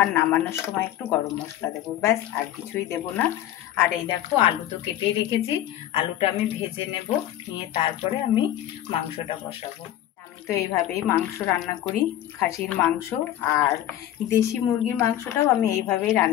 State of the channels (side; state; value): right; quieter; 12.6 dB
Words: আর নামানোর সময় একটু গরম মশলা দেব, ব্যাস, আর কিছুই দেব না। আর এই দেখো, আলু তো কেটেই রেখেছি, আলুটা আমি ভেজে নেব, নিয়ে তারপরে আমি মাংসটা বসাবো। আমি তো এইভাবেই মাংস রান্না করি, খাসির মাংস আর দেশি মুরগির মাংসটাও আমি এইভাবেই